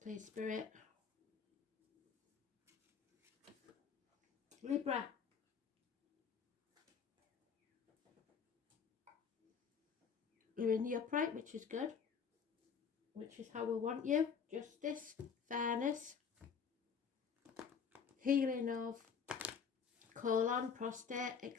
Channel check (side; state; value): right; quieter; 6.4 dB